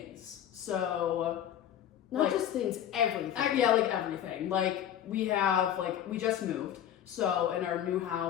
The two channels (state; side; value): quieter; right; 10.5 dB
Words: So not just things, everything. Yeah, like everything. Like we just moved. So in our new